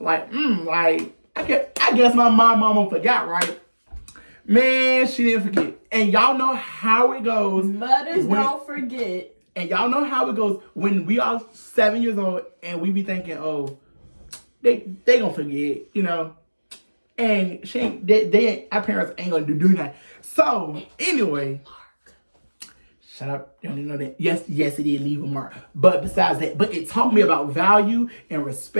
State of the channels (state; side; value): inverted; both; correlation -1.00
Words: like, I guess my mama forgot, right? Man, she didn't forget. And y'all know how it goes. Mothers don't forget. And y'all know how it goes when we are 7 years old and we be thinking, oh, they gonna forget, you know. And our parents ain't gonna do that. So anyway, shut up. You don't even know that. Yes, it did leave a mark. But besides that, but it taught me about value and